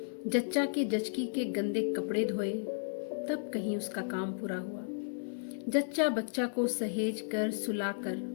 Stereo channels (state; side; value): silent; right; digital silence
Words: जच्चा के जचकी के गंदे कपड़े धोए, तब कहीं उसका काम पूरा हुआ। जच्चा बच्चा को सहेज कर सुलाकर